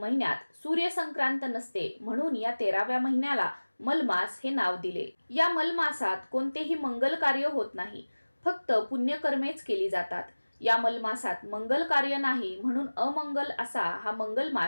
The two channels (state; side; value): inverted; both; correlation -1.00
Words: सूर्यसंक्रांत नसते, म्हणून या 13व्या महिन्याला मलमास हे नाव दिले। या मलमासात कोणतेही मंगल कार्य होत नाही, फक्त पुण्यकर्मेच केली जातात। या मलमासात मंगल कार्य नाही, म्हणून अमंगल असा हा